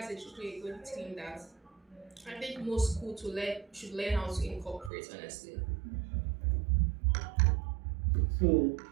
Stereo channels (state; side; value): drops out; left; at 4.9 s